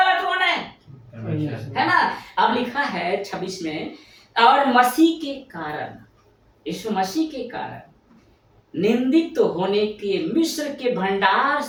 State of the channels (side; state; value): both; identical; correlation 1.00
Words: कौन है ना। अब लिखा है 26 में, और मसीह के कारण, यीशु मसीह के कारण निंदित तो होने के मिस्र के भंडार